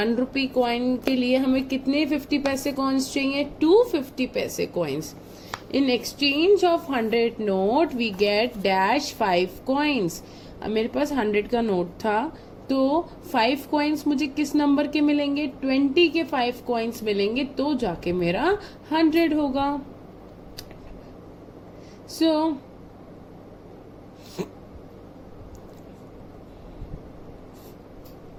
rupee coin के लिए हमें कितने 50 पैसे coins चाहिए? 250 पैसे coins. In exchange of 100 note we get dash 5 coins. अब मेरे पास 100 का नोट था, तो 5 coins मुझे किस नंबर के मिलेंगे? 20 के 5 coins मिलेंगे, तो जाके मेरा 100 होगा. So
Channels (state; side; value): identical; both; correlation 1.00